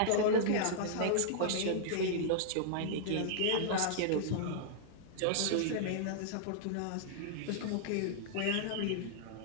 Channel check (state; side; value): different; both; correlation -0.01